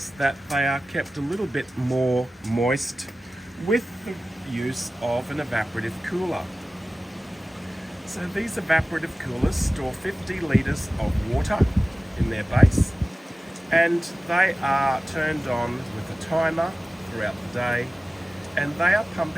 that they are kept a little bit more moist with the use of an evaporative cooler. So these evaporative coolers store 50 litres of water in their base, and they are turned on with a timer throughout the day, and they are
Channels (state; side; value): normal; both; correlation 0.96